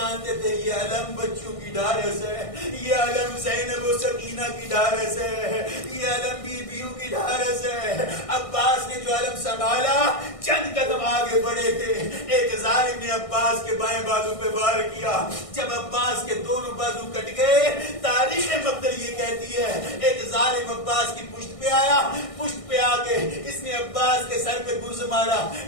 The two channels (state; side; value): late; right; 1.6 ms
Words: تھے یہ علم بچوں کی ڈھارس ہے، یہ علم زینب و سکینہ کی ڈھارس ہے، یہ علم بیویوں کی ڈھارس ہے۔ عباس نے جو علم سنبھالا، چند قدم آگے بڑھے تھے، ایک ظالم نے عباس کے بائیں بازو پہ وار کیا، جب عباس کے دونوں بازو کٹ گئے، تاریخ مقتل یہ کہتی ہے ایک ظالم عباس کی پشت پشت پہ آیا, پشت پہ آ کے اس نے عباس کے سر پہ گرز مارا,